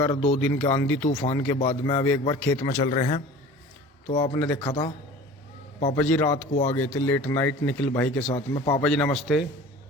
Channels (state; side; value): normal; both; correlation 0.41